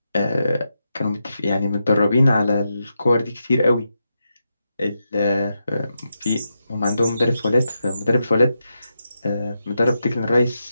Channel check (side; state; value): both; inverted; correlation -0.86